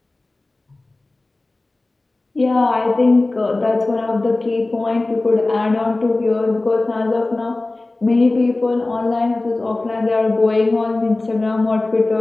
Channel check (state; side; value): quieter; right; 3.0 dB